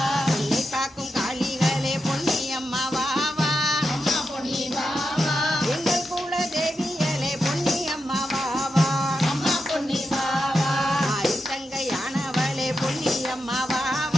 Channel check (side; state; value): both; normal; correlation 0.88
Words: என்னை காக்கும் காளிகளே பொன்னியம்மா வா வா அம்மா பொன்னி வா வா. எங்கள் குல தேவியலே பொன்னியம்மா வா வா அம்மா பொன்னி வா வா. தங்கையானவளே பொன்னியம்மா வா